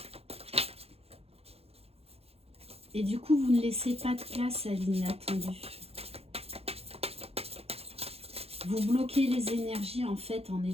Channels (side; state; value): left; late; 0.29 ms